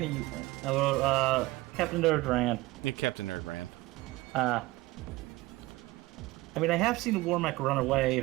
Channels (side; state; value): left; quieter; 20.0 dB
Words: or Captain Nerd ran? Yeah, Captain Nerd ran. I mean, I have seen a Warmech run away